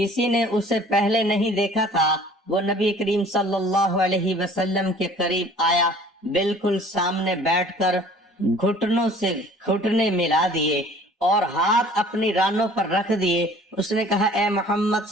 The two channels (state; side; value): normal; both; correlation 0.50